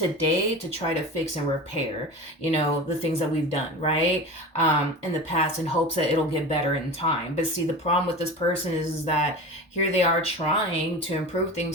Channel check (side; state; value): both; normal; correlation 0.31